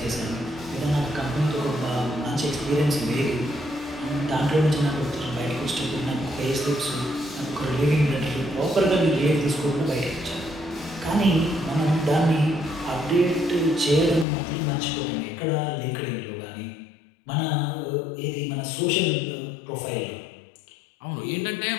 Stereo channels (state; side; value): drops out; right; at 14.2 s